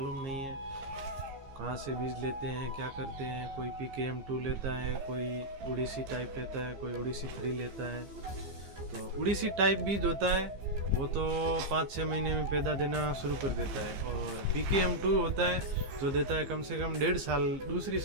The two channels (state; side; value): late; left; 15 ms